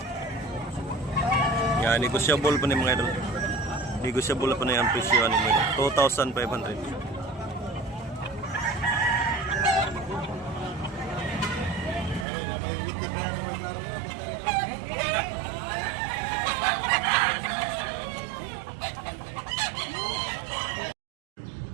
Yan, negotiable pa ni mga idol. Negotiable pa na yung presyo ni mga idol. 2,500.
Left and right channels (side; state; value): left; drops out; at 12.2 s